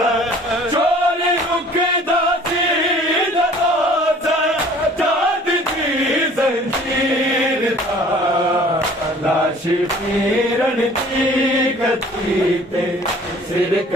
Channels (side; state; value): both; normal; correlation 0.51